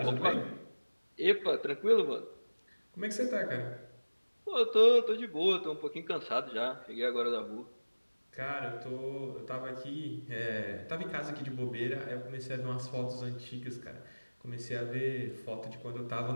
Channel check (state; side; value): inverted; both; correlation -1.00